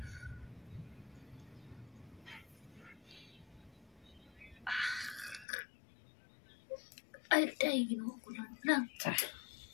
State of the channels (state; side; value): drops out; right; at 5.5 s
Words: Ay, day, ginawa ko lang.